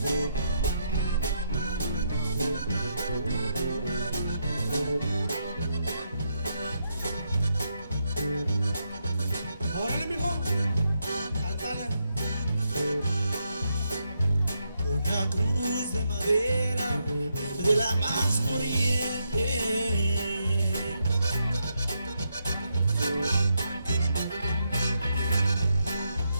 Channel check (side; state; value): both; inverted; correlation -0.81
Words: Órale, mijo, cántale. Una cruz de madera de la más corriente.